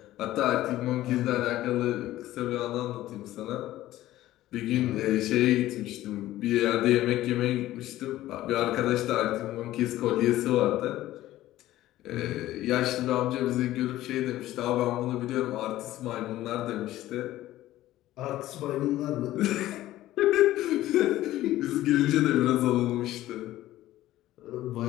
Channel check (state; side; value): quieter; right; 15.0 dB